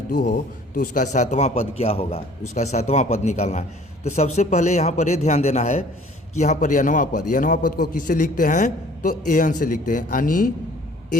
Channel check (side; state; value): both; normal; correlation 0.53